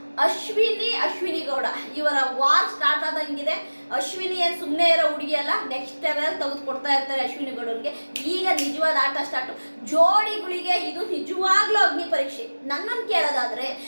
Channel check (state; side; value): inverted; both; correlation -1.00